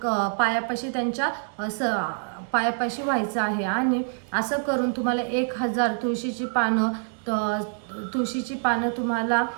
पायापाशी, त्यांच्या पायापाशी व्हायचं आहे। आणि असं करून तुम्हाला 1000 तुळशीची पानं तुम्हाला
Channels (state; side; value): silent; left; 61 dB below the other